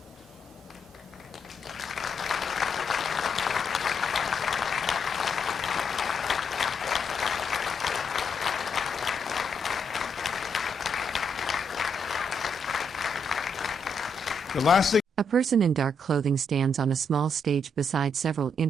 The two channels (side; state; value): both; normal; correlation 0.77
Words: The last thing. A person in dark clothing stands on a small stage beside several